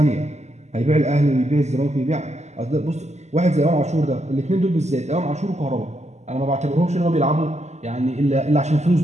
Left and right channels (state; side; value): late; left; 0.33 ms